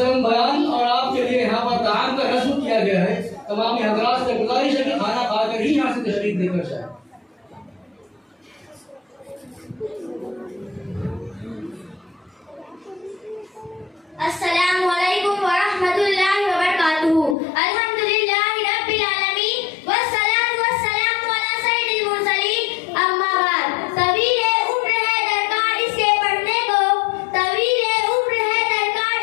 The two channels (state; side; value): drops out; right; at 17.4 s